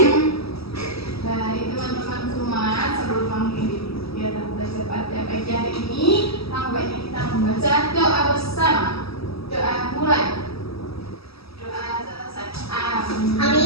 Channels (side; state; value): right; late; 0.77 ms